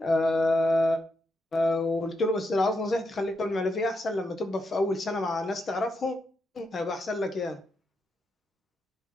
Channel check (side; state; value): both; normal; correlation 0.83